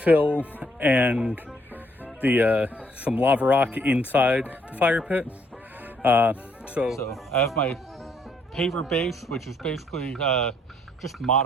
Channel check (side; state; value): both; normal; correlation 0.69